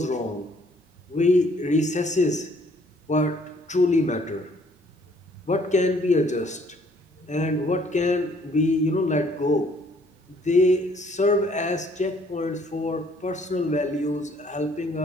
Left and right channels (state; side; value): normal; both; correlation 0.62